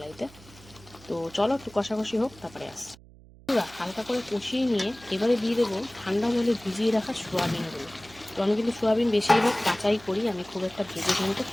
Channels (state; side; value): noise; right; hum, 23 dB below the sound